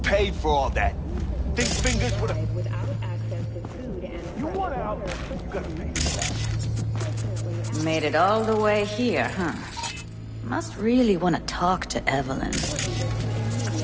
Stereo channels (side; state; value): both; identical; correlation 1.00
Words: for all that? Think fingers with a... You want out, you gotta pay for that. Made it all the way here, huh? Must really want to talk to Evelyn.